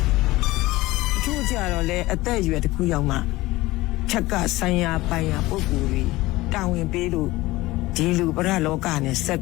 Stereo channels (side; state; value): right; quieter; 19.0 dB